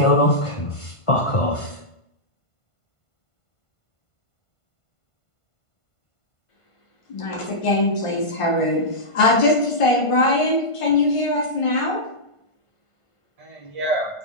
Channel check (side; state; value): right; late; 1.5 ms